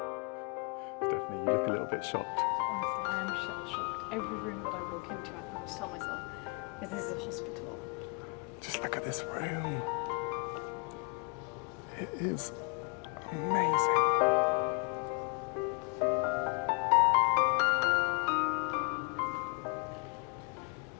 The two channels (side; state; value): right; quieter; 34.3 dB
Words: Stephanie, you look a little bit shocked. Honestly, I am shell-shocked. Every room that I walk into, I'm having to tell myself, this is a hospital. Just look at this room. It is amazing.